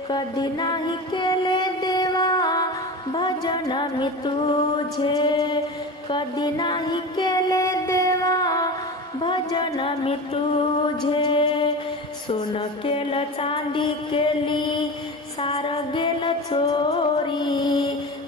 कधी नाही केले देवा भजन मी तुझे, कधी नाही केले देवा भजन मी तुझे। सोनं केलं चांदी केली सार गेलं चोरी,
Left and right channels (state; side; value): normal; both; correlation 0.28